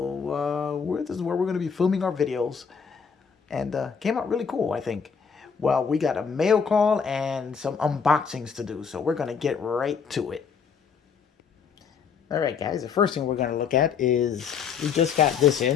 this is where we're going to be filming our videos. And came out really cool, I think. Well, we got a mail call and some unboxings to do. So we're going to get right to it. Alright guys, the first thing we're going to look at is, we just got this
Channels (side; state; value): right; quieter; 6.4 dB